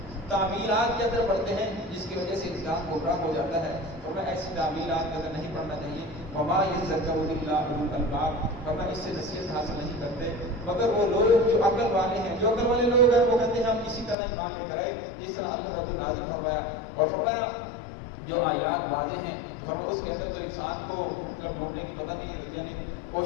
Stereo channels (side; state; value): right; drops out; at 14.2 s